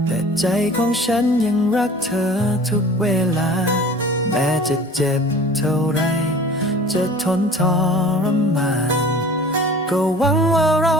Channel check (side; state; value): both; normal; correlation 0.44